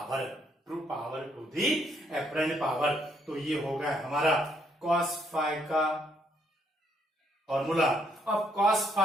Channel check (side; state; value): both; normal; correlation 0.72